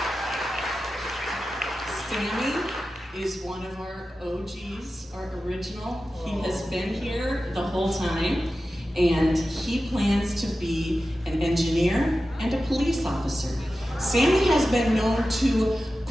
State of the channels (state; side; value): normal; both; correlation 0.93